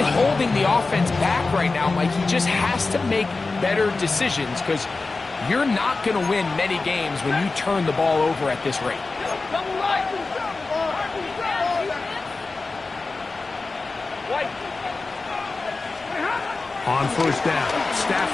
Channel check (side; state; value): right; quieter; 3.7 dB